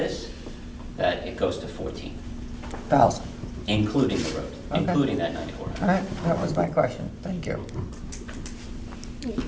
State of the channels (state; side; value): identical; both; correlation 1.00